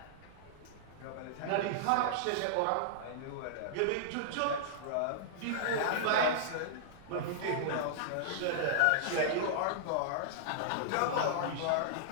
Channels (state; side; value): different; both; correlation -0.02